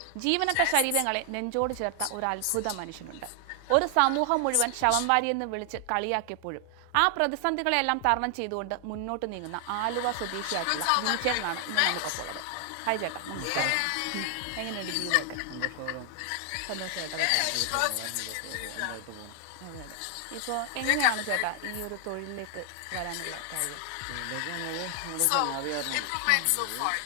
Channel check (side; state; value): both; different; correlation 0.00